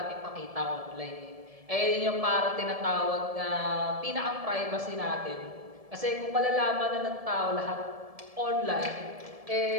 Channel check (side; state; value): left; late; 1.7 ms